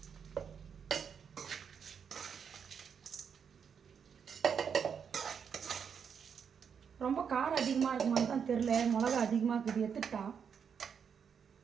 ரொம்ப காரம் அதிகமாக இருக்குமான்னு தான் தெரில. மிளகா அதிகமாக இருக்குது, எடுத்துட்டா.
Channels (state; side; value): quieter; left; 7.0 dB